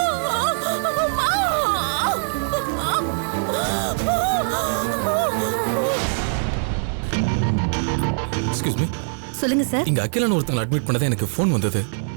Excuse me. சொல்லுங்க சார். இங்க அகிலான ஒருத்தங்க அட்மிட் பண்ணதே எனக்கு ஃபோன் வந்தது.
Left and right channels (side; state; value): left; silent; digital silence